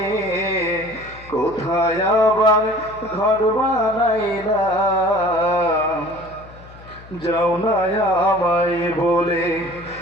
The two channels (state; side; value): noise; left; hum, 20 dB below the sound